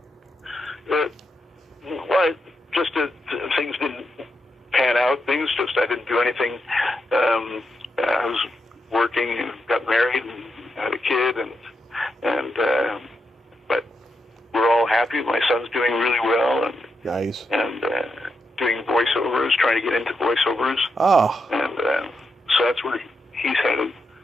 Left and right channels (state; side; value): normal; both; correlation 0.84